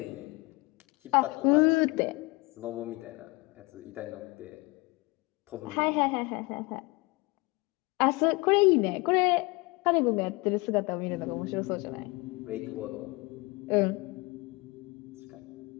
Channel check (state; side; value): quieter; right; 24.8 dB